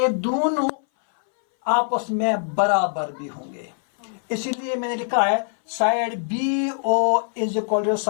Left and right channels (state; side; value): silent; right; 60 dB below the other